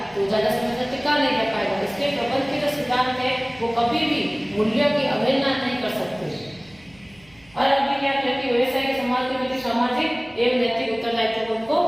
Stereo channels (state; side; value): noise; right; hum, 28 dB below the sound